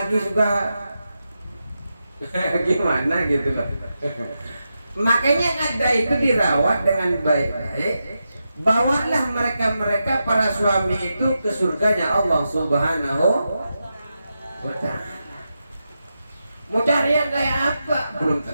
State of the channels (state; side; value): inverted; both; correlation -0.88